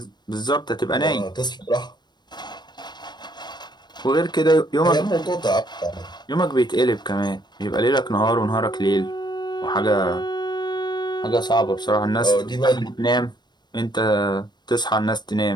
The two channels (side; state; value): right; late; 0.21 ms